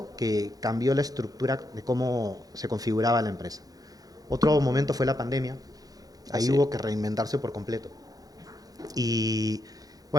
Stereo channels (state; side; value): late; left; 0.18 ms